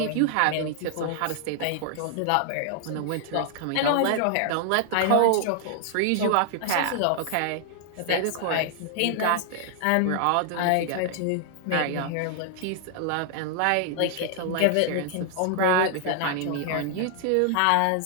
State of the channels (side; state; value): both; different; correlation 0.00